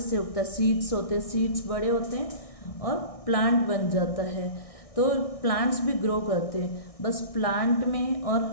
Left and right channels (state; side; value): late; right; 1.6 ms